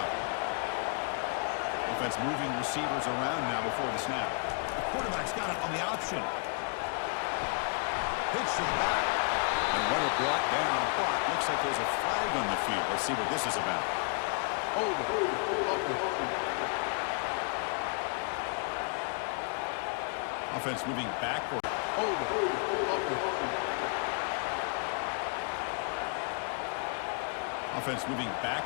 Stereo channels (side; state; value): right; quieter; 39.3 dB